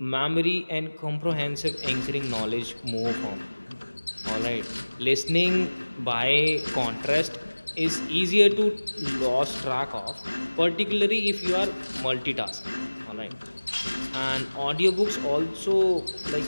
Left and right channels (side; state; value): both; inverted; correlation -1.00